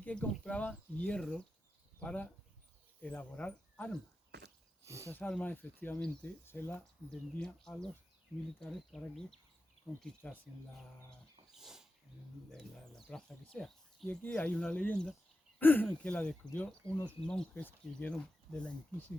que compraban hierro para elaborar armas. Esas armas efectivamente se las vendían a los militares para que conquistasen la plaza que sea. Y aquí hay una leyenda que la descubrió unos monjes que vieron de la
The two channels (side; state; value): both; normal; correlation 0.92